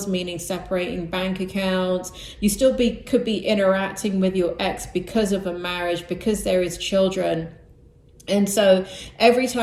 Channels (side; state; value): both; identical; correlation 1.00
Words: meaning separating bank accounts. You still could be interacting with your ex because of a marriage, because there is children. And so every